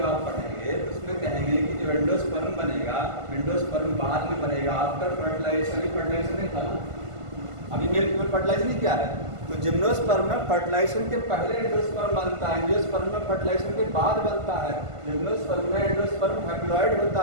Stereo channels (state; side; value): late; left; 1.5 ms